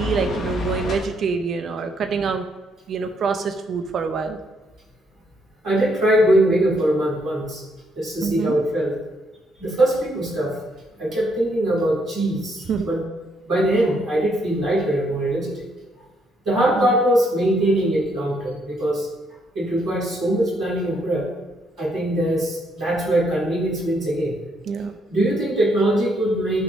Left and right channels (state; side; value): normal; both; correlation 0.73